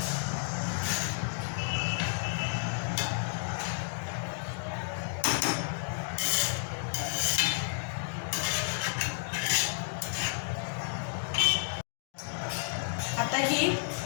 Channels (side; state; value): right; silent; digital silence